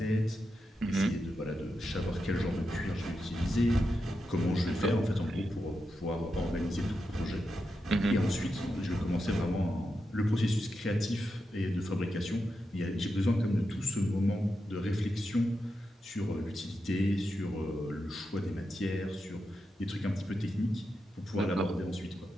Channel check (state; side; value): normal; both; correlation 0.87